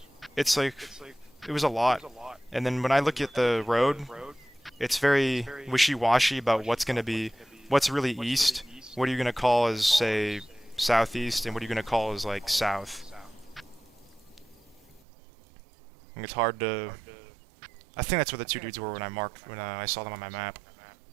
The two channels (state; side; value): drops out; left; at 15.0 s